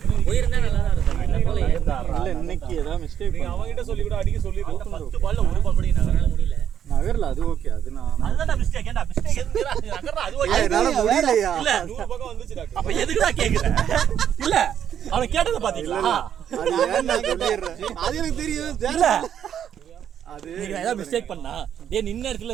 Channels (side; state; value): left; quieter; 9.3 dB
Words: போயிருந்தா நல்லா தான் இருக்கும் என்ன போல இல்ல இன்னைக்கு ஏதாவது மிஸ்டேக் நீங்க அவங்க கிட்ட சொல்லி கூட அடிக்க சொல்லிருக்கோம் 10 பால்ல ஒரு பால் கூட நகரால முடியல நகர்ல அது ஓகே அது நான் அதுதான் மிஸ்டேக் ஏன்டா மிஸ்டேக் எதுக்குடா நகரா அது ஓகே என்னால முடியலையா இல்ல 100 பக்கம் வந்துச்சு டாக்டர் அப்ப எதுக்குடா கேக்குற இல்ல அவன கேட்டத பாத்தீங்களா அது ஏன் நான் சொல்லிடுறேன் அது எனக்கு தெரியும் இல்ல அது நீங்க ஏதாவது மிஸ்டேக் பண்ணா டேய் நின்ன இடத்துல